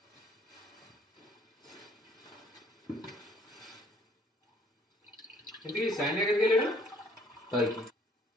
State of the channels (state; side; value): normal; both; correlation 0.61